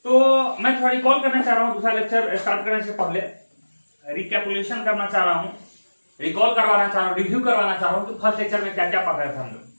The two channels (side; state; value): both; inverted; correlation -1.00